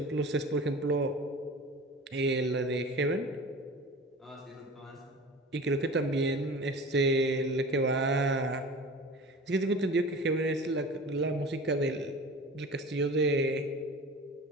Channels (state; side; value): normal; both; correlation 0.37